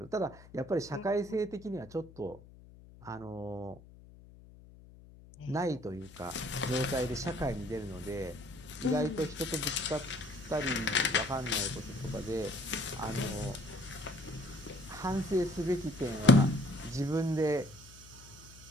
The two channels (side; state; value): left; noise; hum, 20 dB below the sound